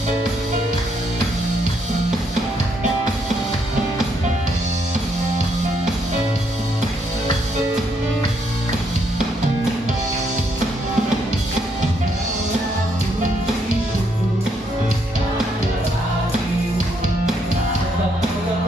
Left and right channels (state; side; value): normal; both; correlation 0.74